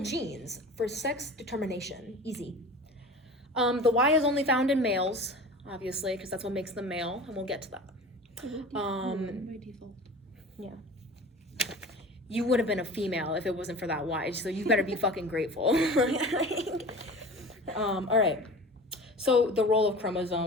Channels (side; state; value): both; normal; correlation 0.37